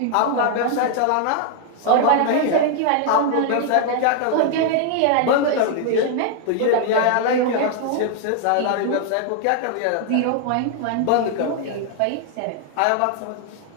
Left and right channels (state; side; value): different; both; correlation 0.00